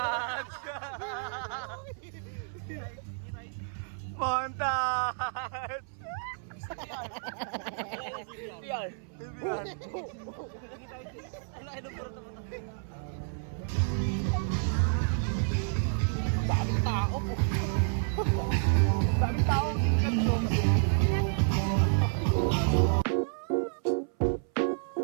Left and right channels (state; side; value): silent; left; 58 dB below the other